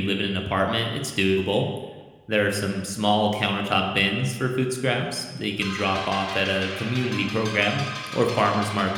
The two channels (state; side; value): identical; both; correlation 1.00